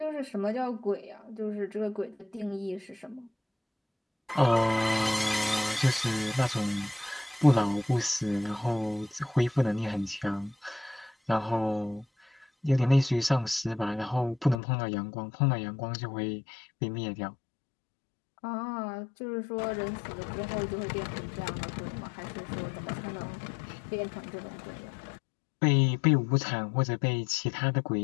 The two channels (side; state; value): right; drops out; at 14.6 s